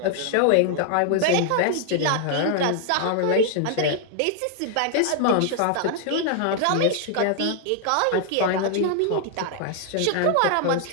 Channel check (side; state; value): both; different; correlation 0.00